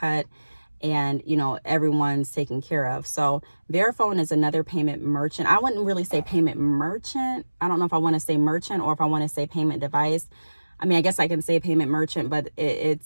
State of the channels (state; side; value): inverted; both; correlation -1.00